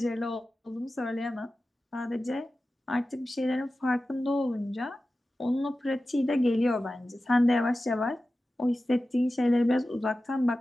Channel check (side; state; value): both; normal; correlation 0.94